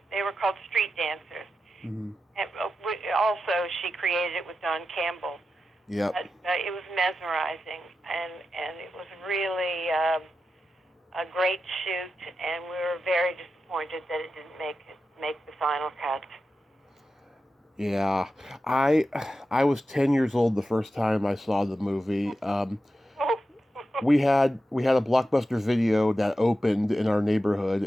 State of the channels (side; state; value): both; normal; correlation 0.91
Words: They were called street dancers. And also, she created it with Don Campbell. Yeah. It was mesmerizing, and it was really a great shoot, and we were very disappointed that it didn't make the final cut. Yeah, I was 10 years old the first time I saw the movie. We had a Blockbuster Video that opened in our neighborhood,